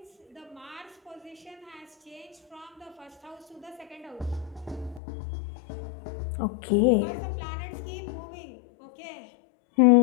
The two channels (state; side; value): drops out; right; at 5.0 s